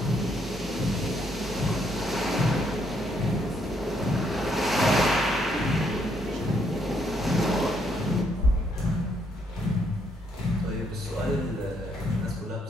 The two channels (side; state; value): both; normal; correlation 0.73